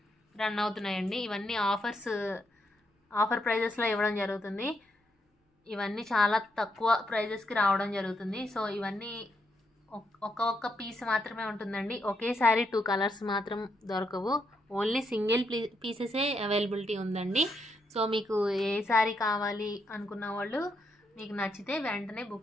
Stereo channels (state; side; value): normal; both; correlation 0.79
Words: రన్ అవుతున్నాయండి. ఇవన్నీ ఆఫర్ ప్రైజెస్లో ఇవ్వడం జరుగుతుంది. ఇవన్నీ చాలా తక్కువ ప్రైజెస్కి రావడం జరుగుతుంది. సో ఇవన్నీ ఒక్క పీస్ మాత్రమే ఉంటుందండి. ఒకేసారి 2 కలర్స్ మాత్రం దొరకవు. ఓన్లీ సింగిల్ పీసెసే అవైలబిలిటీ ఉందండి. సో మీకు ఏ శారీ కావాలి అనుకున్న వాళ్ళు మీకు నచ్చితే వెంటనే